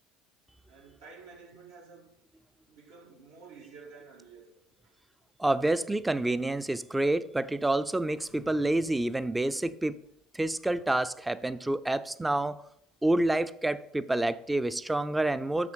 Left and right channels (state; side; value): normal; both; correlation 0.96